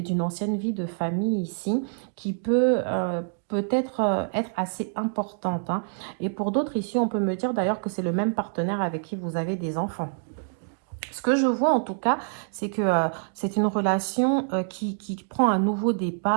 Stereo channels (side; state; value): left; silent; digital silence